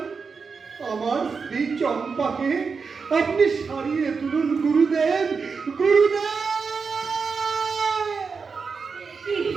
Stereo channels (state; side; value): quieter; left; 5.2 dB